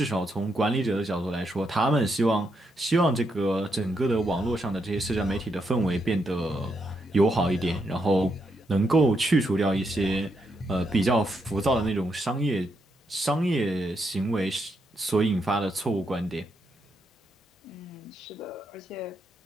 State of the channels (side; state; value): both; normal; correlation 0.80